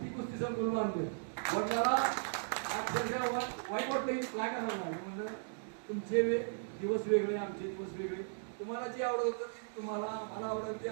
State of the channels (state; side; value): silent; left; digital silence